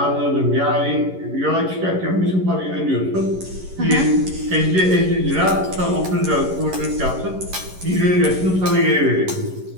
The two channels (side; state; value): left; late; 11 ms